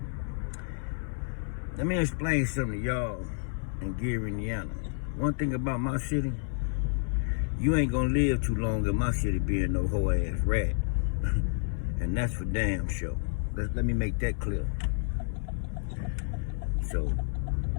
Let me explain something to y'all in Gary, Indiana. One thing about my city, you ain't gonna live too long in my city being no hoe ass rat. And that's for damn sure. Let me make that clear. So,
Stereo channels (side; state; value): right; silent; 58 dB below the other